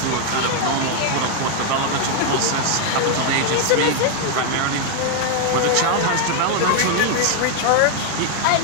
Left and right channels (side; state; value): both; different; correlation 0.01